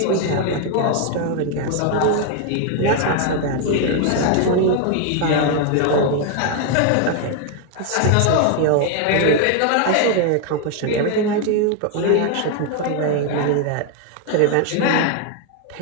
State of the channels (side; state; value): both; different; correlation 0.01